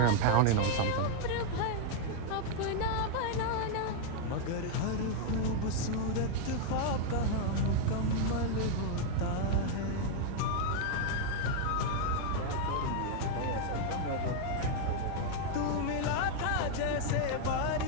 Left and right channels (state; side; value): different; both; correlation 0.00